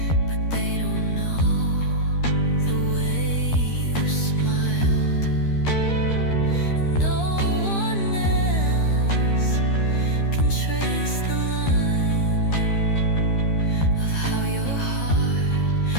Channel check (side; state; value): right; late; 13 ms